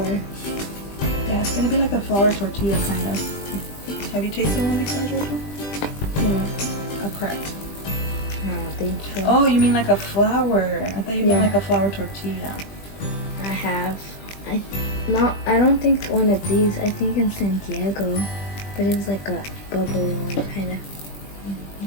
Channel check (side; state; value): right; late; 20 ms